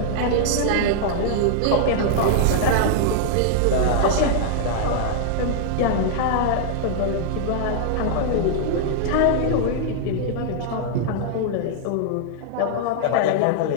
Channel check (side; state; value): both; different; correlation -0.01